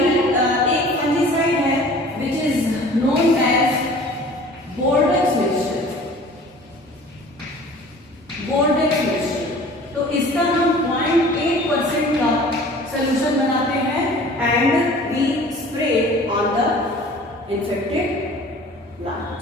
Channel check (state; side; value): normal; both; correlation 0.46